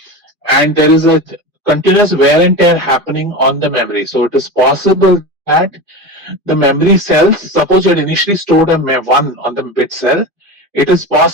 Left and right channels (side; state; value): left; late; 2.5 ms